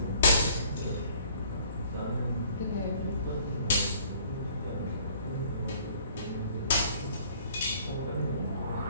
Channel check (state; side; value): inverted; both; correlation -0.56